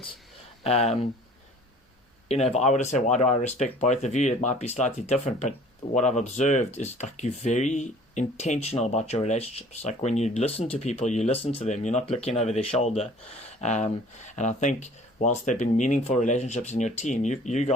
If I were to say, why do I respect both of you, it might be slightly different, but what I've observed is you're very intentional about your relationships. Like when you listen to people, you listen to them, you're not looking over their shoulder. And I think whilst there have been meaningful relationships in your team, you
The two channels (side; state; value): both; normal; correlation 0.50